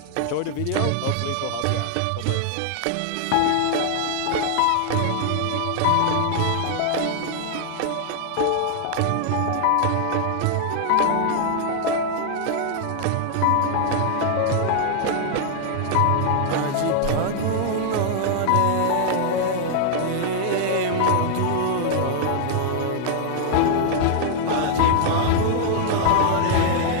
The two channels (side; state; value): both; different; correlation -0.01